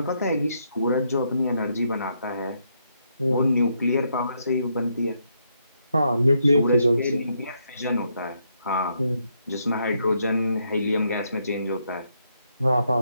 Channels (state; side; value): inverted; both; correlation -0.77